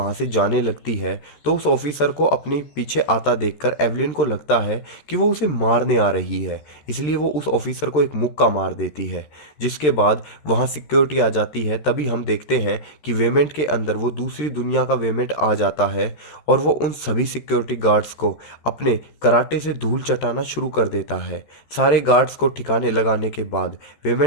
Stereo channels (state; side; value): late; right; 13 ms